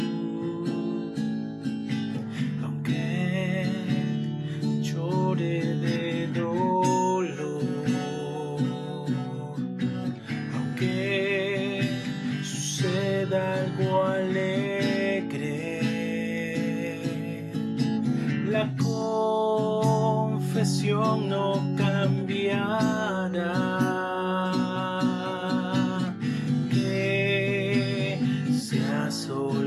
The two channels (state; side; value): identical; both; correlation 1.00